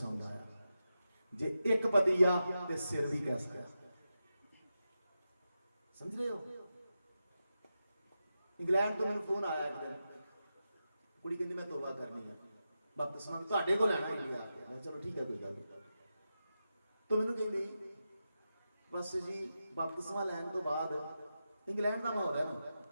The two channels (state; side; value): inverted; both; correlation -0.90